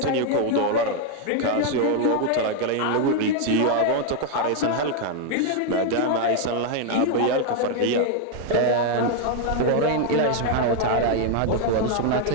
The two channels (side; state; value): both; different; correlation 0.00